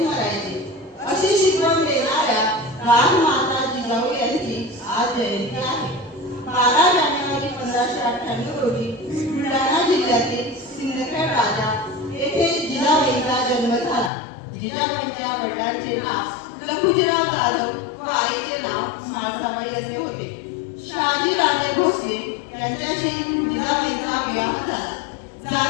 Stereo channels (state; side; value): drops out; right; at 14.1 s